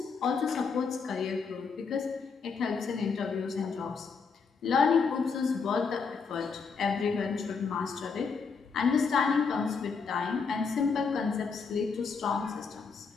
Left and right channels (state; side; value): quieter; right; 5.3 dB